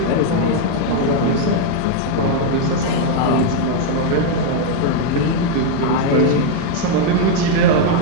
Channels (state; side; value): different; both; correlation 0.01